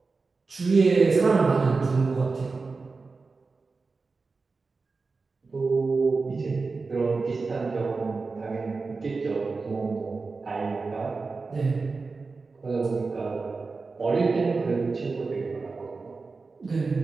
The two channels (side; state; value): left; quieter; 4.2 dB